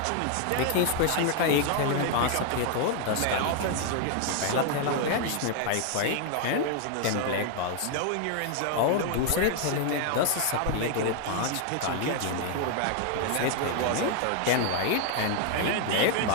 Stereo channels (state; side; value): different; both; correlation 0.00